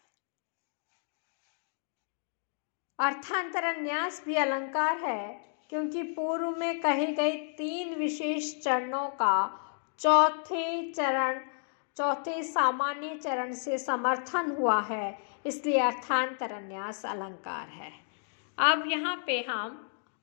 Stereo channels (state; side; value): silent; right; digital silence